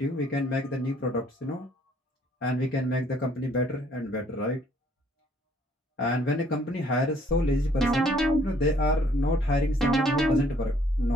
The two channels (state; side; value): normal; both; correlation 0.62